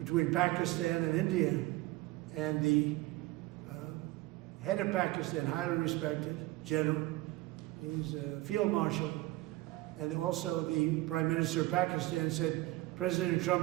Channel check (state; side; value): quieter; left; 19.0 dB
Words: Pakistan and India. And the head of Pakistan, highly respected general, he's a field marshal, and also the Prime Minister of Pakistan said, President